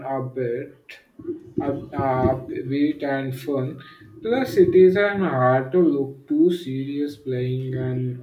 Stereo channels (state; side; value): identical; both; correlation 1.00